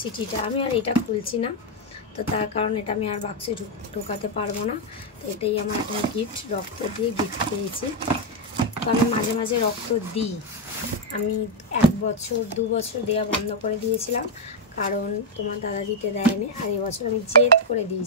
আমি আর এটা খুলছি না, তো তার কারণ এটা আমি আর বাক্সে ঢোকাতে পারবো না। তো এটাই আমার একটা গিফট, রক্ত দিয়ে গিফট পেয়েছি। তো আমি মাঝে মাঝে রক্ত দিই। আমি 1 বছর 2 বছর দেওয়া বন্ধ করে দিয়েছিলাম, কারণ তোমার দাদা দিতে দেয়নি। আর এবছর আমি জেদ করে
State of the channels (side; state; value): both; normal; correlation 0.01